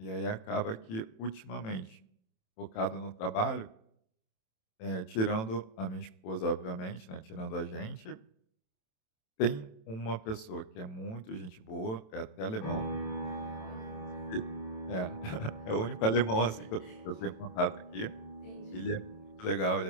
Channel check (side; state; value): right; late; 27 ms